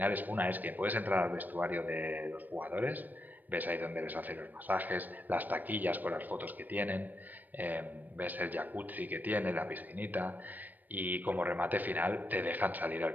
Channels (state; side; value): late; left; 0.087 ms